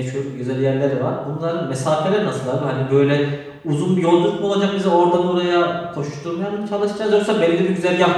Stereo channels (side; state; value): both; identical; correlation 1.00